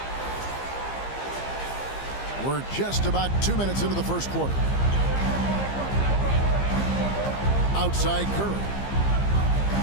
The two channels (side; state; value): right; late; 15 ms